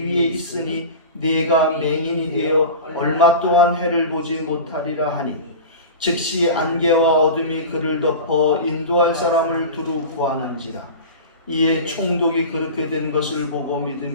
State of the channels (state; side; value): inverted; both; correlation -0.31